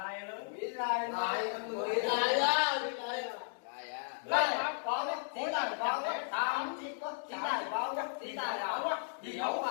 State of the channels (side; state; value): right; silent; digital silence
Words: lớn mỹ lại á lên có đấy chỉ tài có đấy tám chỉ có chỉ tài có đấy chỉ tài đó á gì đâu